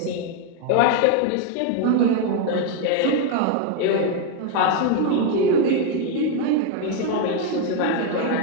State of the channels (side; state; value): both; different; correlation 0.01